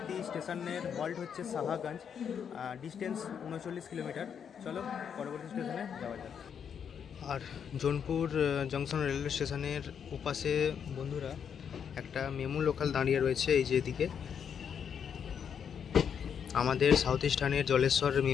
স্টেশনের হল্ট হচ্ছে সাহাগঞ্জ, ডিস্টেন্স 39 কিলোমিটার। চলো পরবর্তী স্টেশনে যাওয়া যাক। আর জোনপুর জংশন রেলওয়ে স্টেশনের ওপাশে বন্ধুরা একটা মেমু লোকাল দাঁড়িয়ে রয়েছে, এই যে এদিকে আমাদের সাউথ ইস্টার্নের জলেশ্বর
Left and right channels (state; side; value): quieter; right; 7.6 dB